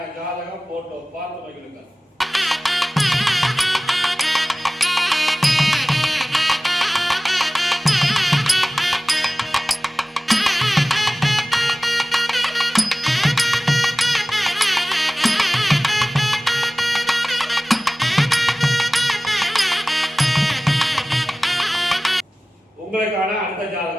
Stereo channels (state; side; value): normal; both; correlation 0.97